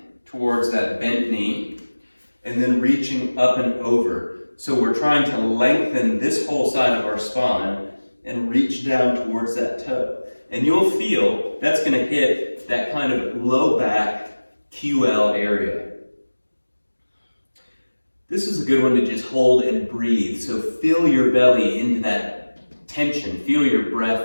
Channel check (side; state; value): both; inverted; correlation -1.00